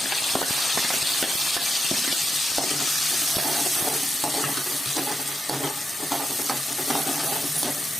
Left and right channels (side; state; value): both; normal; correlation 0.86